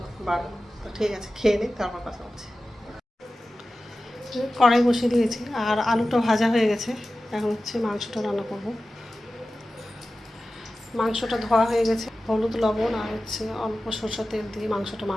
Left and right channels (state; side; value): normal; both; correlation 0.95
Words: বাড়া। তো ঠিক আছে, খেয়ে নিই, তারপর কথা হচ্ছে। কড়াই বসিয়ে দিয়েছি, আর আলুটা ভাজা হয়ে গেছে। এখন হচ্ছে মাংসটা রান্না করব। মাংসটা ধোয়া হয়ে গেছে, হলুদ, লবণ আর হচ্ছে অল্প সরষের তেল দিয়ে মাংসটা